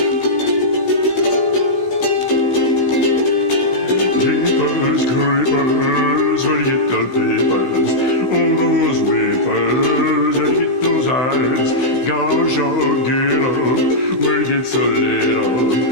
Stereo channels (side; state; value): right; late; 15 ms